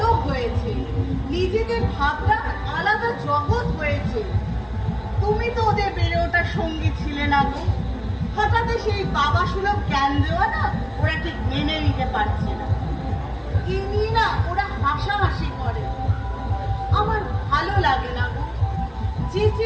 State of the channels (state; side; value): identical; both; correlation 1.00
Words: হয়েছে, নিজেদের ভাবনা আলাদা জগৎ হয়েছে। তুমি তো ওদের বেড়ে ওঠার সঙ্গী ছিলে না গো। হঠাৎ সেই বাবা সুলভ জ্ঞান দেওয়া না ওরা ঠিক মেনে নিতে পারছে না। কি নিয়ে না ওরা হাসাহাসি করে। আমার ভালো লাগে না গো। যে